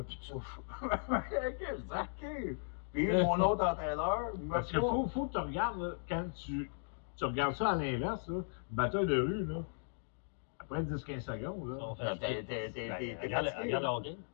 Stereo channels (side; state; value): right; silent; digital silence